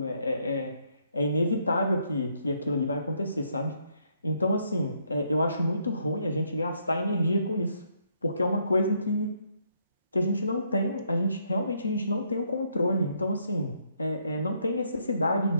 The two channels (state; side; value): inverted; both; correlation -0.72